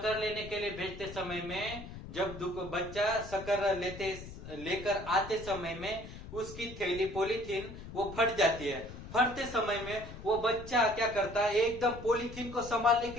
लेने के लिए भेजते समय में जब बच्चा शक्कर लेकर आते समय में उसकी थैली पॉलीथीन वो फट जाती है। फटते समय में वो बच्चा क्या करता है, एकदम पॉलीथीन को संभालने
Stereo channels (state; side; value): noise; left; rumble, 12 dB below the sound